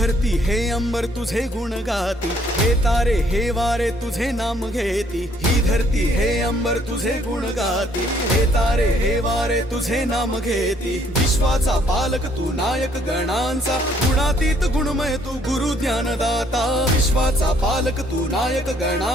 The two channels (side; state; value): both; normal; correlation 0.65